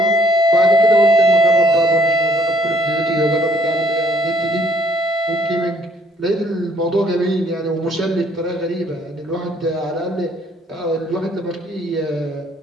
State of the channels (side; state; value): both; normal; correlation 0.64